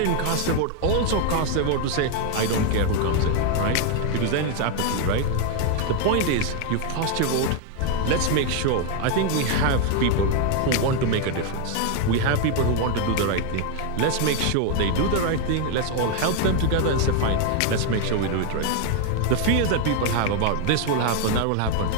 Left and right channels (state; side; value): different; both; correlation 0.01